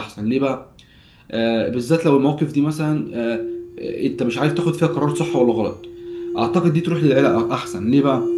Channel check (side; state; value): both; identical; correlation 1.00